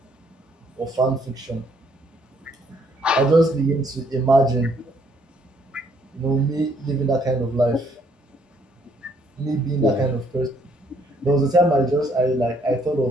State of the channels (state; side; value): normal; both; correlation 0.67